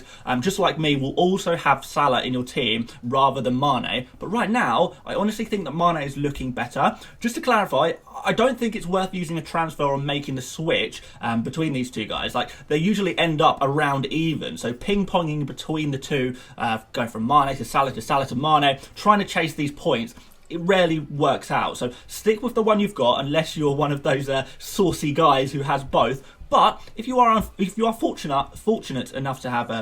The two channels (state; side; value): identical; both; correlation 1.00